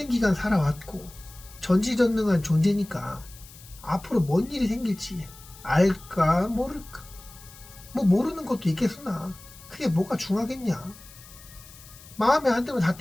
기간 살아왔고 전지전능한 존재니까 앞으로 뭔 일이 생길지 알까 모를까. 뭐 모르는 것도 있겠으나 그게 뭐가 중하겠냐. 마음에 안 들면 다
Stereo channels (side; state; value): left; noise; hiss, 20 dB below the sound